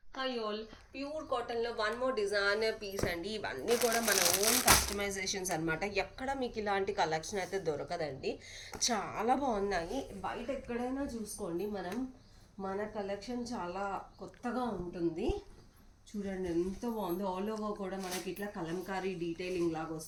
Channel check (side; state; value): both; identical; correlation 1.00